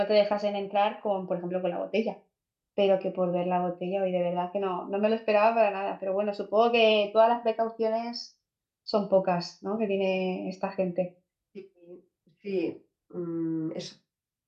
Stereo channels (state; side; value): identical; both; correlation 1.00